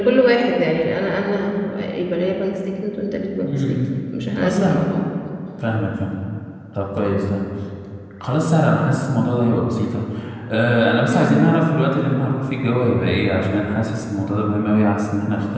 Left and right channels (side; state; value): both; identical; correlation 1.00